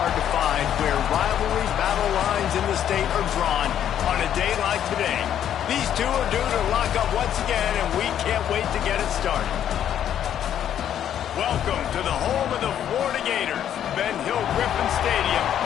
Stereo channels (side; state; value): right; quieter; 10.1 dB